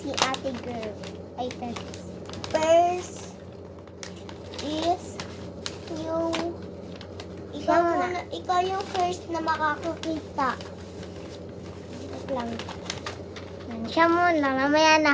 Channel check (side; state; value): both; identical; correlation 1.00